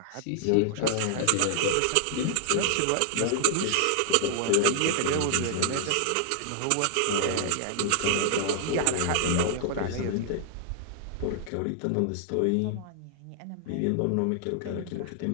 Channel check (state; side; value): different; both; correlation -0.01